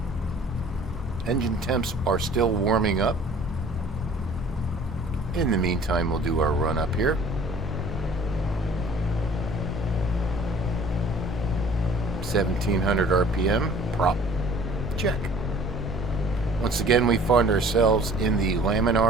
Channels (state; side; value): normal; both; correlation 0.51